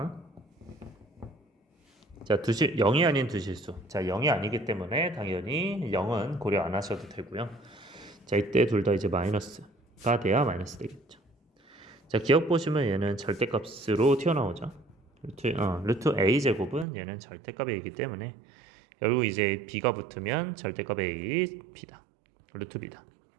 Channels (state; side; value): drops out; left; at 16.9 s